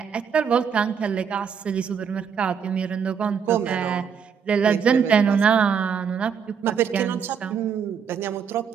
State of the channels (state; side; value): quieter; left; 6.9 dB